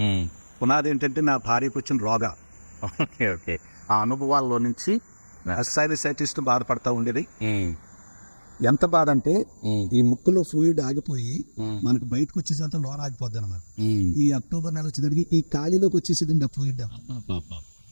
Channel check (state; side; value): inverted; both; correlation -1.00